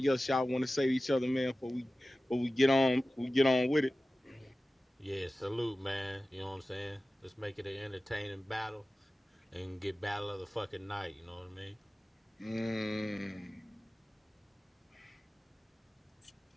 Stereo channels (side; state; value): both; normal; correlation 0.96